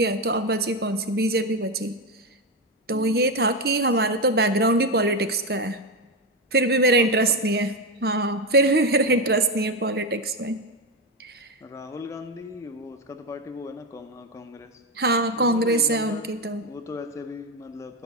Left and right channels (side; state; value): both; normal; correlation 0.11